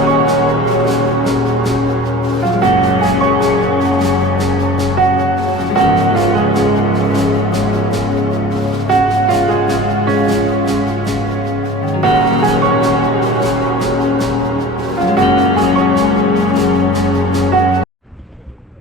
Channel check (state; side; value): normal; both; correlation 0.43